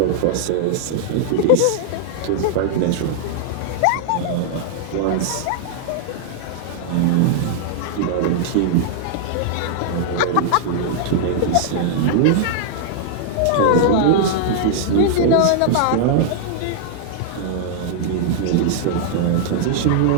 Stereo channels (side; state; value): both; different; correlation -0.01